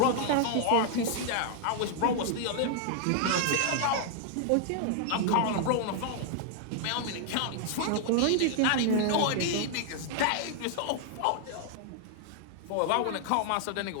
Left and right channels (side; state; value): both; different; correlation 0.00